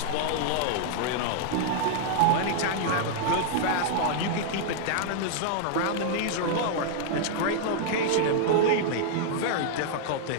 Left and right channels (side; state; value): both; different; correlation -0.01